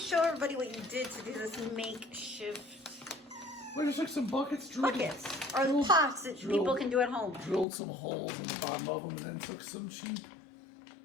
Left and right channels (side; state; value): right; drops out; at 7.7 s